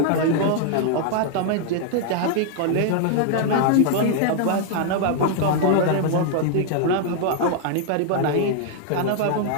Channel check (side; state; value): both; different; correlation 0.00